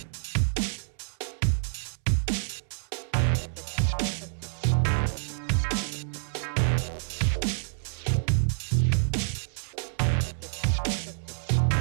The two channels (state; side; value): silent; left; 59 dB below the other